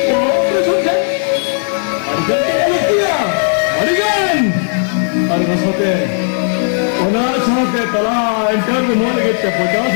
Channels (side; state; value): right; silent; digital silence